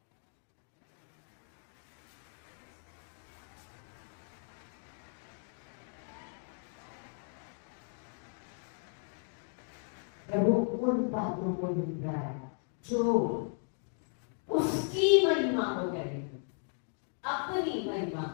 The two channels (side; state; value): right; silent; 54 dB below the other